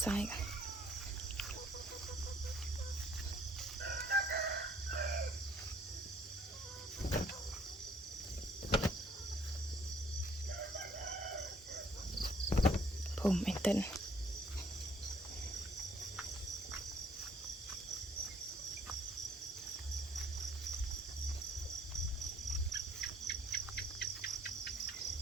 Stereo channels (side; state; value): both; normal; correlation 0.61